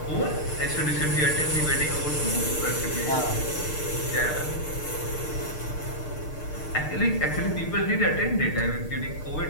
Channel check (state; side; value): late; right; 6.6 ms